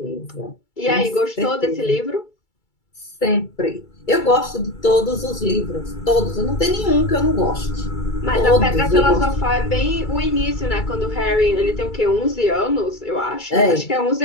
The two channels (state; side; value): late; right; 2.3 ms